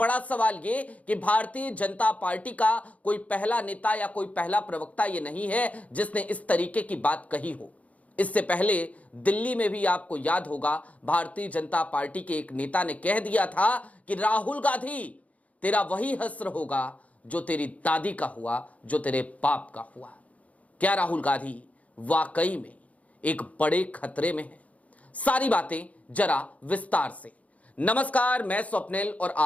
सवाल ये कि भारतीय जनता पार्टी का कोई पहला नेता या कोई पहला प्रवक्ता ये नहीं है जिसने इस तरीके की बात कही हो। इससे पहले दिल्ली में भी आपको याद होगा, भारतीय जनता पार्टी के एक नेता ने कह दिया था कि राहुल गांधी, तेरा वही हश्र होगा जो तेरी दादी का हुआ, जो तेरे बाप का हुआ। क्या राहुल गांधी वाकई में एक बड़े खतरे में है? सारी बातें जरा विस्तार से। नमस्कार, मैं स्वप्निल और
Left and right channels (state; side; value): late; right; 0.068 ms